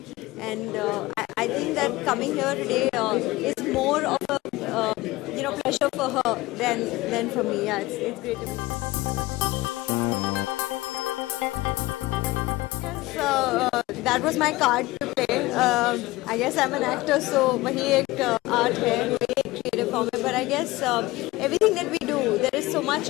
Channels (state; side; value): quieter; right; 19.5 dB